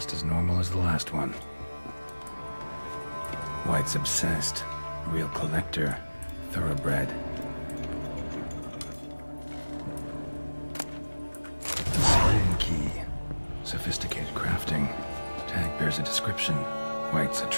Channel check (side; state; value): both; inverted; correlation -1.00